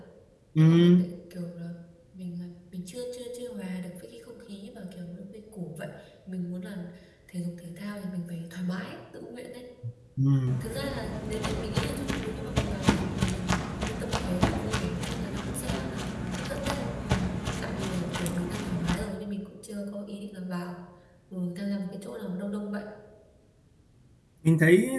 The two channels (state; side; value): identical; both; correlation 1.00